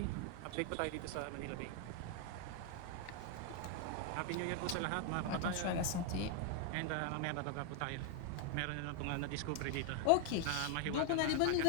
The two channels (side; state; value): both; different; correlation 0.00